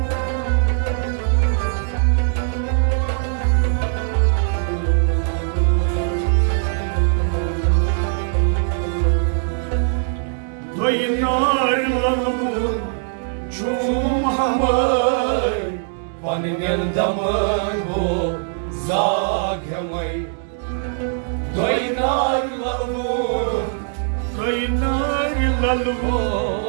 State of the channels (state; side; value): silent; left; digital silence